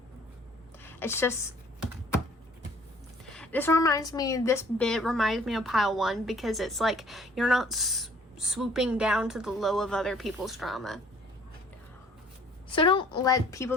It's just, this bit reminds me of pile 1 because it's like you're not swooping down to the low of other people's drama. So don't let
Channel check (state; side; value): normal; both; correlation 0.56